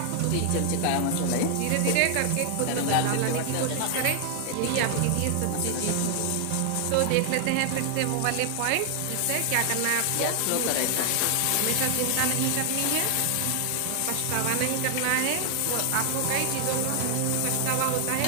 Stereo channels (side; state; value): both; different; correlation 0.00